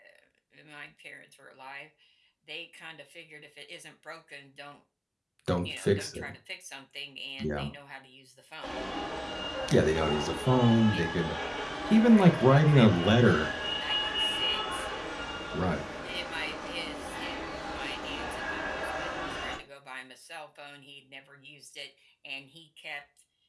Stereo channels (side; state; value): both; identical; correlation 1.00